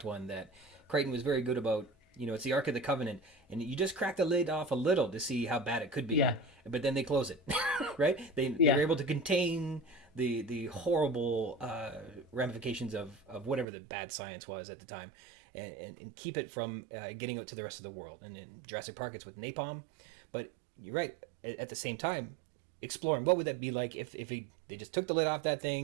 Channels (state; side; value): drops out; left; at 13.7 s